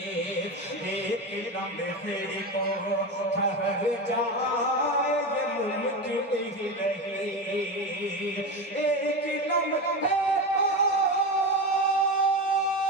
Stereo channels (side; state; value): both; normal; correlation 0.21